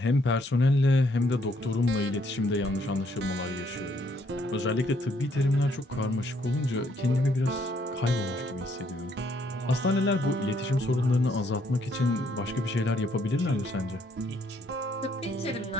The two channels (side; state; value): both; normal; correlation 0.69